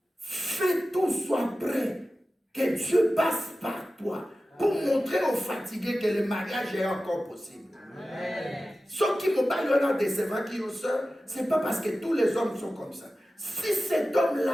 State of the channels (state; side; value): normal; both; correlation 0.94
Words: Fais tout soit prêt, que Dieu passe par toi pour montrer aux fatigués que le mariage est encore possible. Ceux qui me parlent de ces qui ont soeur, ce n'est pas parce que tous les hommes sont comme ça. Si cet